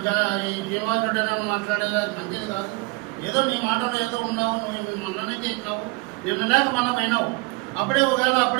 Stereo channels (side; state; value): left; quieter; 26.1 dB